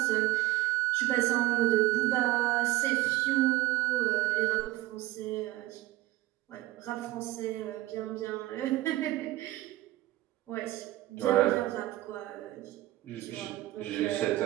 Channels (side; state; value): left; quieter; 17.0 dB